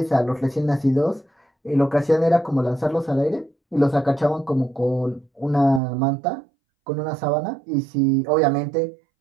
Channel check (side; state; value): left; drops out; at 5.8 s